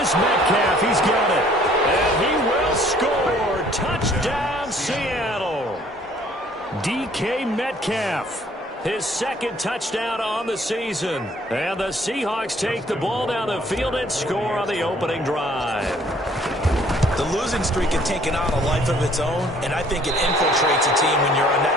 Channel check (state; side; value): normal; both; correlation 0.58